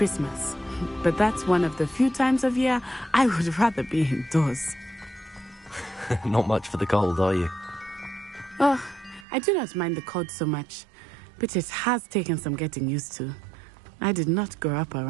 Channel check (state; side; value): drops out; left; at 9.2 s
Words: But that's one of the few times of year I would rather be indoors. Not much for the cold, are you? Oh, I do not mind the cold so much, but it has taken some getting used to. I did not grow up